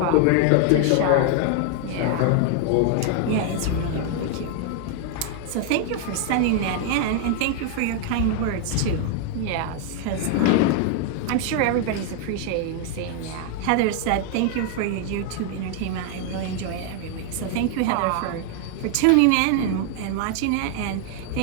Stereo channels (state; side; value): different; both; correlation 0.00